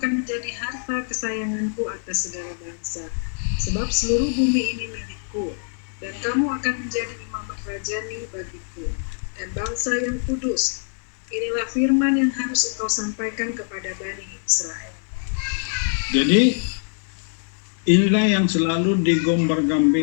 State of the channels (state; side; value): silent; right; digital silence